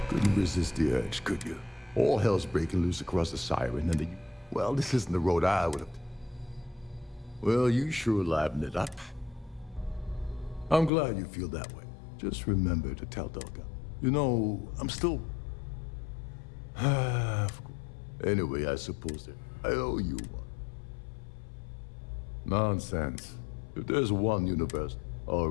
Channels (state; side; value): drops out; right; at 10.9 s